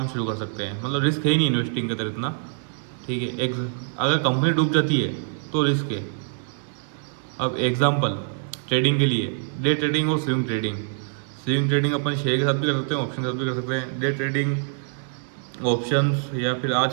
शुरू कर सकते हैं। मतलब रिस्क है ही नहीं इन्वेस्टिंग के अंदर इतना, ठीक है। अगर कंपनी डूब जाती है तो रिस्क है। अब एग्जांपल ट्रेडिंग के लिए डे ट्रेडिंग और स्विंग ट्रेडिंग अपन शेयर के साथ भी कर सकते हैं, ऑप्शन के साथ भी कर सकते हैं। डे ट्रेडिंग ऑप्शंस या फिर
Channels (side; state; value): left; silent; digital silence